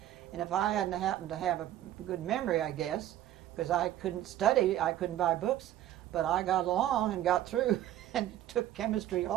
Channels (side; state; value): left; quieter; 12.5 dB